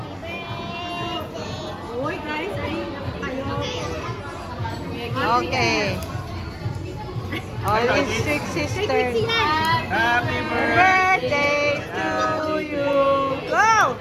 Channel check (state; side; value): identical; both; correlation 1.00